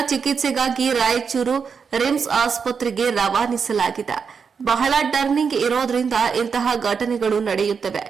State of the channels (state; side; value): quieter; left; 6.0 dB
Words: ಚಿಕಿತ್ಸೆಗಾಗಿ ರಾಯಚೂರು ರಿಮ್ಸ್ ಆಸ್ಪತ್ರೆಗೆ ರವಾನಿಸಲಾಗಿದೆ. ಬಹಳ ಟರ್ನಿಂಗ್ ಇರೋದ್ರಿಂದ ಇಂತಹ ಘಟನೆಗಳು ನಡೆಯುತ್ತವೆ.